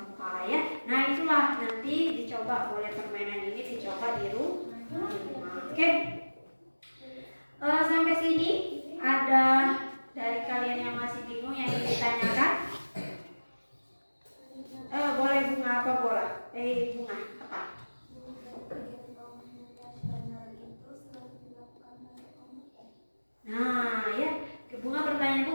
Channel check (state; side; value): inverted; both; correlation -1.00